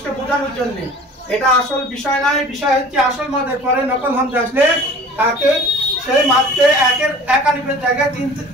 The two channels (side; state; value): both; normal; correlation 0.44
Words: বোঝানোর জন্য, এটা আসল বিষয় নয়। বিষয় হচ্ছে আসল মাদের পরে নকল হামজা আসলে তাকে সেই মাদে এক আলিফের জায়গায়